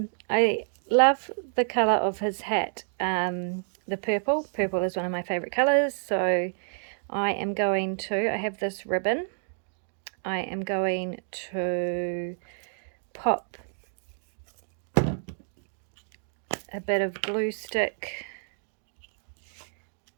love the colour of his hat, the purple. Purple is one of my favourite colours, so I am going to, I have this ribbon, I am going to pop a bit of glue stick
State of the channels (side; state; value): left; silent; digital silence